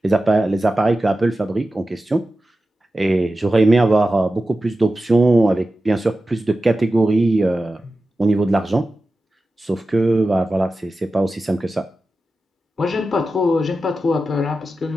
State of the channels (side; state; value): both; normal; correlation 0.93